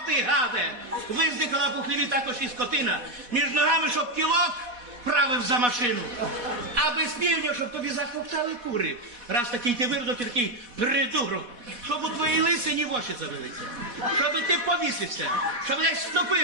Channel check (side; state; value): left; late; 4.1 ms